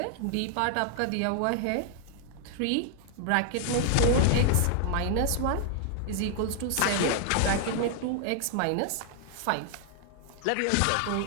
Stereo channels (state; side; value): different; both; correlation 0.00